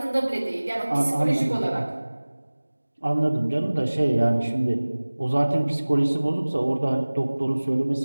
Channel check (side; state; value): both; inverted; correlation -1.00